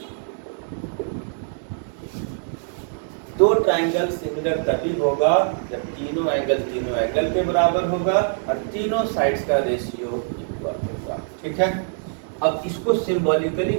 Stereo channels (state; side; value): silent; left; digital silence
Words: दो ट्रायंगल सिमिलर तभी होगा जब तीनों एंगल के बराबर होगा और तीनों साइड्स का रेशियो इक्वल होगा। ठीक है। अब इसको सिंबॉलिकली